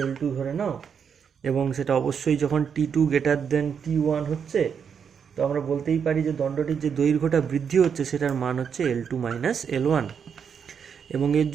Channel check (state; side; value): quieter; left; 7.0 dB